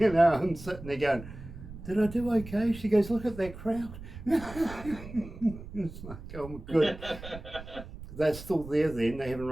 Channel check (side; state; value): right; noise; rumble, 13 dB below the sound